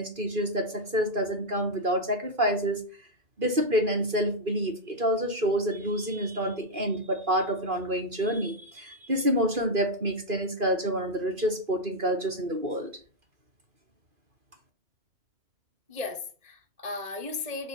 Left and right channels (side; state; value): left; late; 2.5 ms